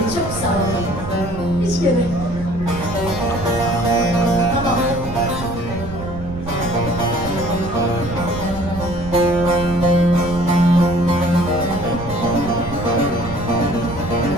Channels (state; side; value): noise; right; rumble, 10 dB below the sound